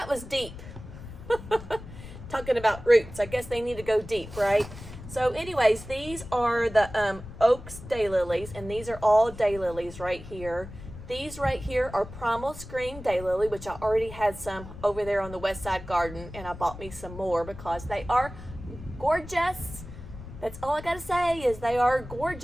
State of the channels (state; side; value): noise; left; rumble, 13 dB below the sound